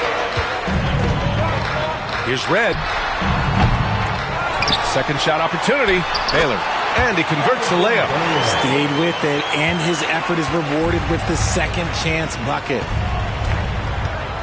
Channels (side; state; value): both; identical; correlation 1.00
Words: Here's Red. Second shot opportunity. Baylor. And he converts the layup. Stayed with it, and his effort is rewarded with the second chance bucket.